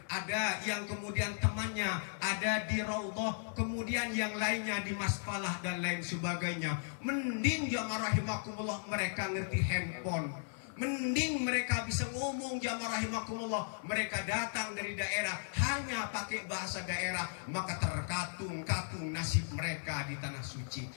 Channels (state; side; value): silent; right; 54 dB below the other